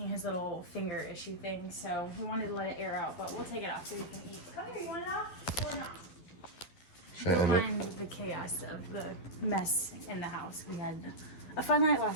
his little finger issue thing, so we wanted to let it air out, but we'll take it off so you can eat. Come here, you want it off or not? Don't mind the chaos of the mess in the house. We had a fun night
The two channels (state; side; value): late; right; 12 ms